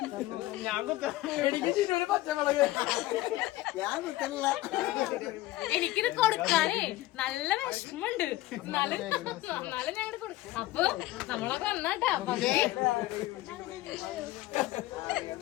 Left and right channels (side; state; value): right; quieter; 16.9 dB